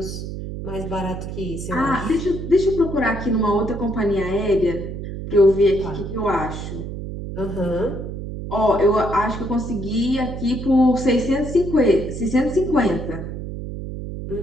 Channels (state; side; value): noise; right; hum, 7 dB below the sound